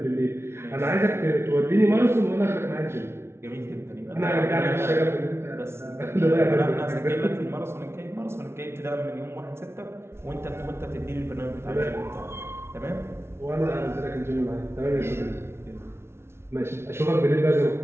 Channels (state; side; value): late; left; 0.12 ms